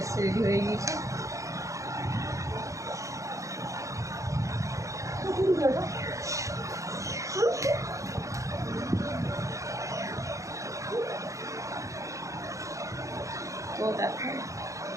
এসছে, রেডি হয়ে গিয়েছে। তো দেখো,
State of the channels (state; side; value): late; left; 0.15 ms